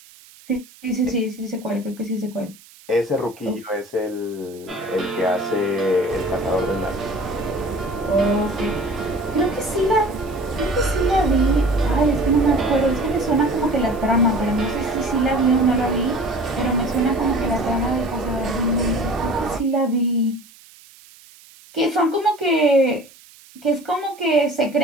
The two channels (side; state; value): right; noise; hiss, 24 dB below the sound